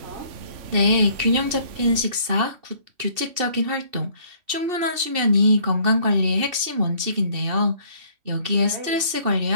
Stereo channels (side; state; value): left; late; 2.7 ms